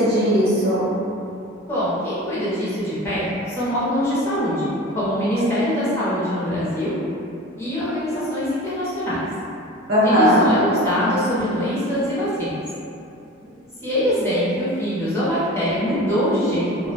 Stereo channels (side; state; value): both; normal; correlation 0.36